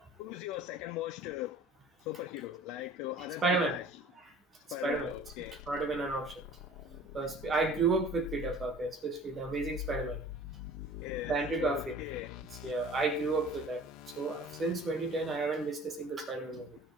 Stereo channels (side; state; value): both; normal; correlation 0.46